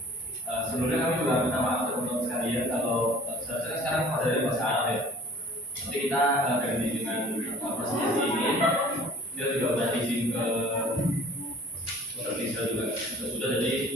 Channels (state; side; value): normal; both; correlation 0.49